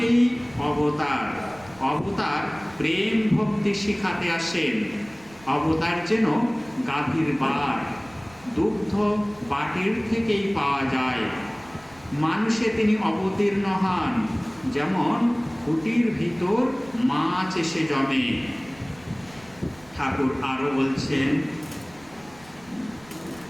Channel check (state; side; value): noise; right; rumble, 25 dB below the sound